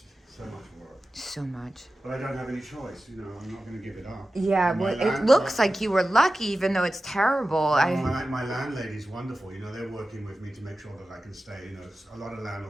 So much work. So much. But I don't have any choice, I'm not going to give it up. Yeah, well, it looks like you were lucky, even though it's terrible. My landlady's wonderful, they're working with me to make sure that I can stay. A lot of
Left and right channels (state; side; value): normal; both; correlation 0.94